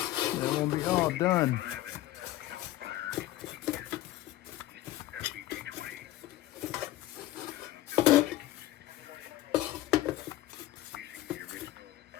will be all done.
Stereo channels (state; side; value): quieter; right; 15.4 dB